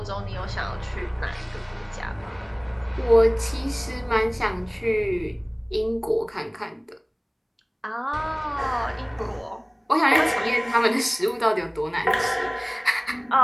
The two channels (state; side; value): identical; both; correlation 1.00